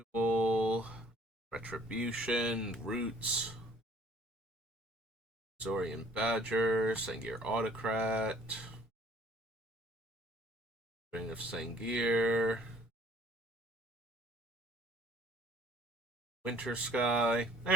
Retribution. Roots. Zorian Badger. Sangir Autocrat. Ring of Sangir. Winter Sky.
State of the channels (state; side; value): normal; both; correlation 0.57